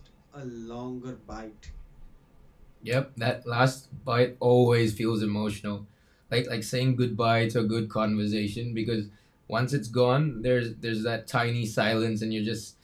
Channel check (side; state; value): both; identical; correlation 1.00